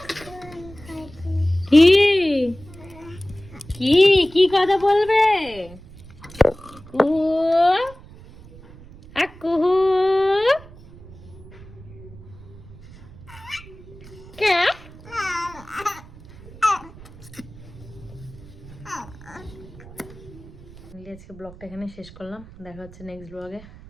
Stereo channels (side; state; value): right; noise; rumble, 19 dB below the sound